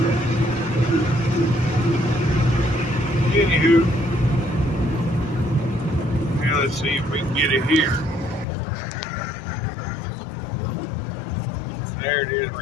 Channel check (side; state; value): right; drops out; at 8.5 s